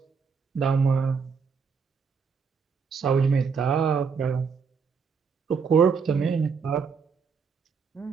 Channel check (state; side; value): quieter; left; 5.7 dB